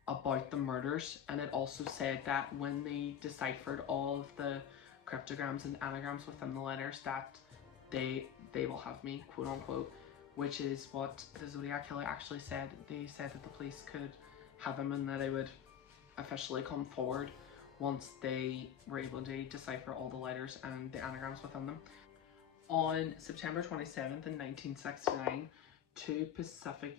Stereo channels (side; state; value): right; quieter; 9.0 dB